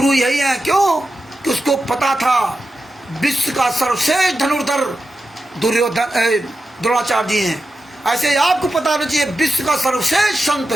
यही हैं। क्यों? कि उसको पता था विश्व का सर्वश्रेष्ठ धनुर्धर द्रोणाचार्य जी हैं। ऐसे आपको पता होना चाहिए विश्व का सर्वश्रेष्ठ संत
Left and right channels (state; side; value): normal; both; correlation 0.90